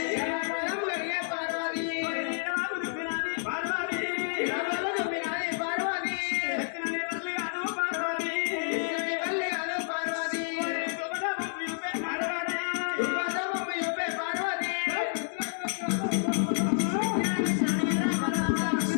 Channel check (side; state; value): right; silent; digital silence